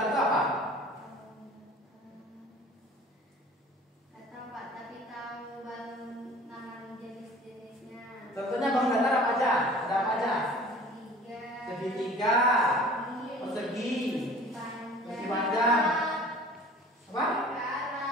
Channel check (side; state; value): both; normal; correlation 0.46